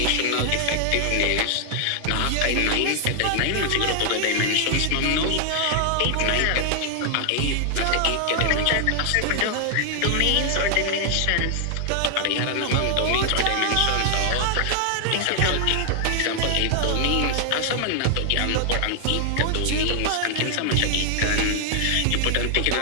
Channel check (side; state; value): both; different; correlation 0.00